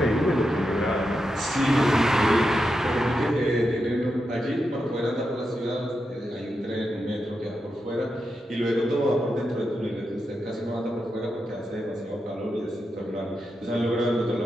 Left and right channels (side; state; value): both; normal; correlation 0.87